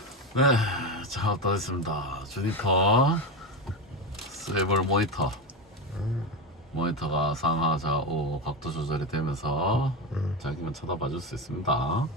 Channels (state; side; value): normal; both; correlation 0.16